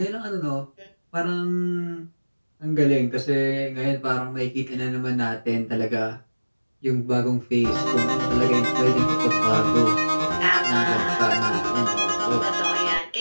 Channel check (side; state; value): both; inverted; correlation -1.00